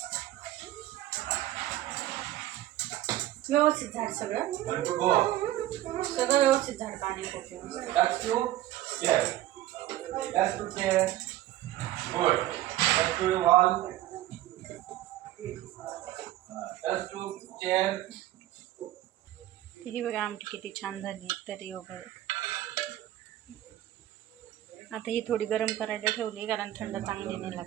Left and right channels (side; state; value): left; quieter; 14.5 dB